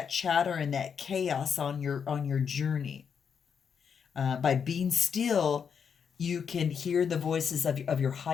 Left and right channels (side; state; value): right; quieter; 6.9 dB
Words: chatter and that chaos on your journey. By being still, you can hear the voices of your